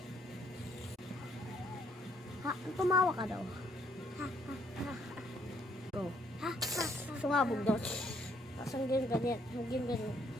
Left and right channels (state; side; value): normal; both; correlation 0.68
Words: Tumawa ka daw. Go. Sumabog daw. Tapos ang ganyan.